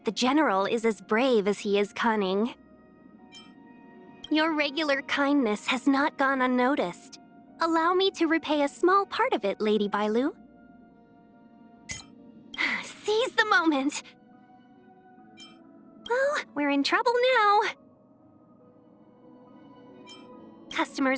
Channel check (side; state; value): both; identical; correlation 1.00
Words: the General is as brave as he is cunning. Your regular kindness has not gone unnoticed. Allow me to repay a small part of it, Lady Bai Lu. Seize the moment! Well, we're in trouble now.